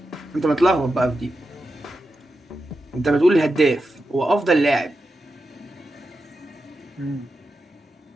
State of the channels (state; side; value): normal; both; correlation 0.89